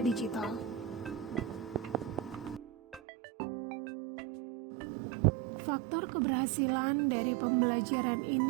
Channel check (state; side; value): drops out; left; at 3.0 s